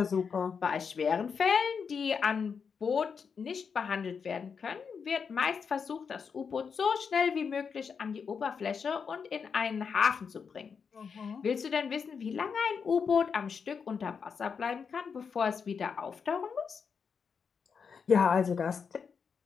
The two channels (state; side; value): quieter; right; 6.1 dB